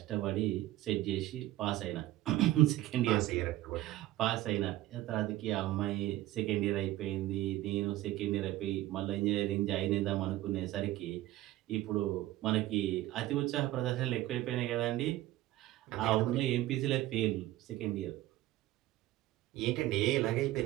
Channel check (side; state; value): left; quieter; 15.7 dB